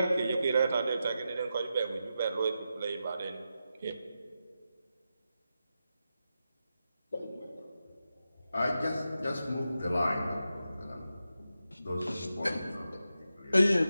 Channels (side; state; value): both; inverted; correlation -0.89